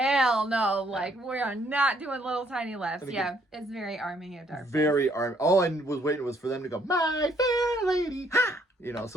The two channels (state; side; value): normal; both; correlation 0.68